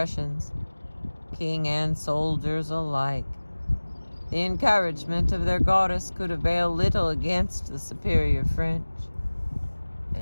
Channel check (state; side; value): inverted; both; correlation -1.00